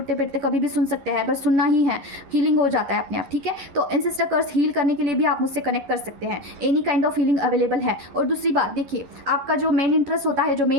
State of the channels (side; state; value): left; late; 11 ms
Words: बैठते कभी भी सुन सकते हैं, बस सुनना ही है, हीलिंग हो जाता है अपने आप, ठीक है? तो एंसेस्टर कर्स हील करने के लिए भी आप मुझसे कनेक्ट कर सकते हैं, any kind of healing available है। और दूसरी बात देखिए, आपका जो मेन इंटरेस्ट होता है, जो